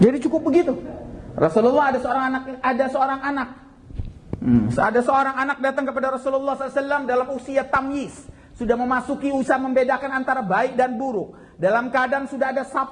Jadi cukup begitu. Rasulullah ada seorang anak. Ada seorang anak datang kepada Rasulullah SAW dalam usia tamyiz. Sudah memasuki usia membedakan antara baik dan buruk. Dalam keadaan sudah ada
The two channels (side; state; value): both; identical; correlation 1.00